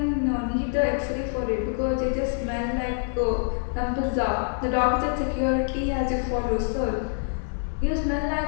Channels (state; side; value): silent; right; 61 dB below the other